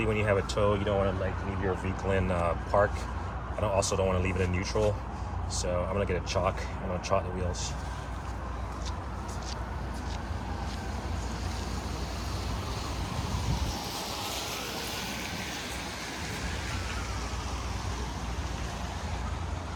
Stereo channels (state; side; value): identical; both; correlation 1.00